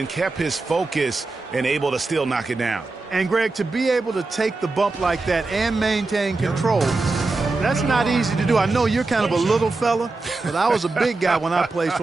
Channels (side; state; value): left; quieter; 3.5 dB